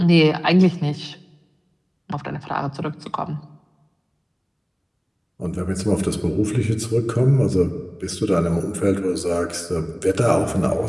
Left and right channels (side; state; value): both; identical; correlation 1.00